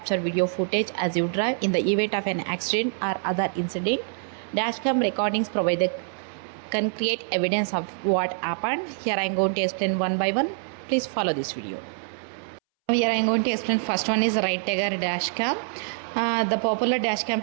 video footage as you drive. In the event of an accident or other incident, dashcam recordings can create evidence of what happened. Here I am going to explain one by one. Please follow this video. Here I am going to explain first one is Right Tiger dashcam. The popular dashcam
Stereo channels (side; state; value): left; silent; 61 dB below the other